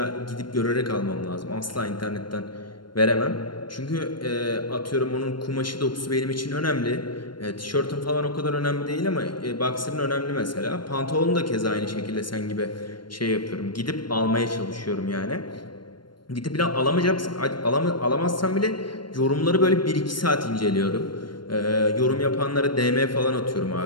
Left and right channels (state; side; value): late; right; 0.72 ms